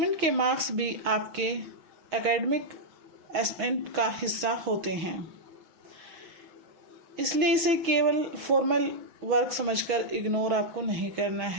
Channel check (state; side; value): late; left; 6.3 ms